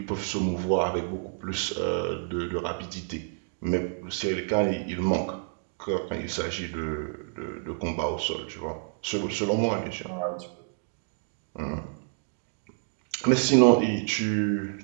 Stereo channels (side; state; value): left; silent; digital silence